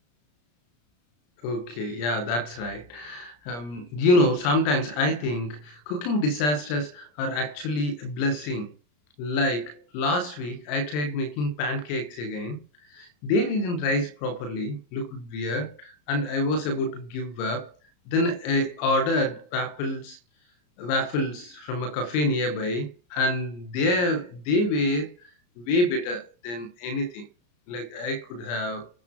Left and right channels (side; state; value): right; late; 34 ms